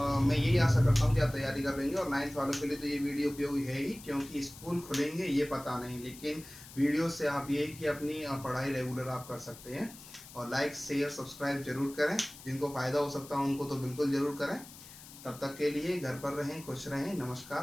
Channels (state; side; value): noise; left; hiss, 17 dB below the sound